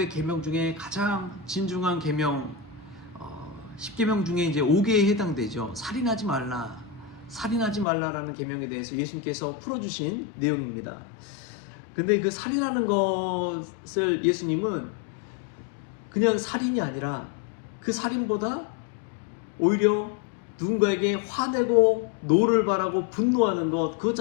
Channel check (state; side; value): drops out; right; at 7.9 s